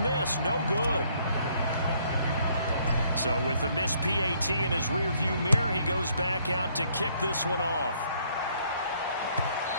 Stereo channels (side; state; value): both; inverted; correlation -0.66